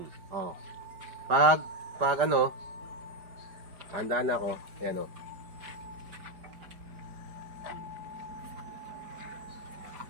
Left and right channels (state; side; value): late; left; 5.0 ms